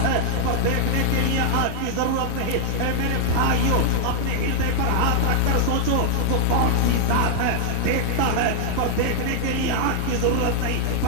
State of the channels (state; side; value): different; both; correlation 0.00